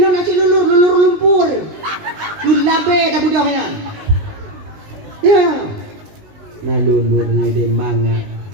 nasi lulur lumpur. Lulabe dah budak ya. Ya. Nalulur ni de manga.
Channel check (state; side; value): late; left; 19 ms